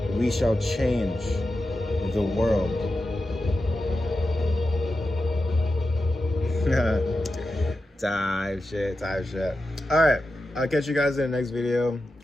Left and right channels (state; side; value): normal; both; correlation 0.91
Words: we shall change the world. Type shit. All right, I'll catch you guys in the next video.